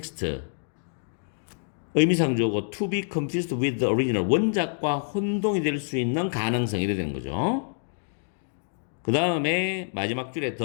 의미상조고 to be confused with the original 원작과 혼동이 될 수 있는 가능성이 되는 거죠. 그 다음에 마지막 줄에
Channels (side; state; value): right; silent; digital silence